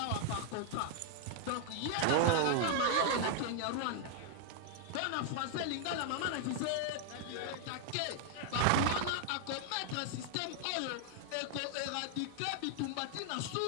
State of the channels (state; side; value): different; both; correlation 0.00